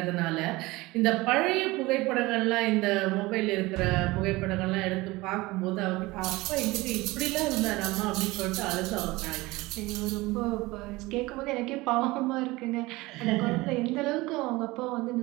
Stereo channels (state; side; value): quieter; left; 21.0 dB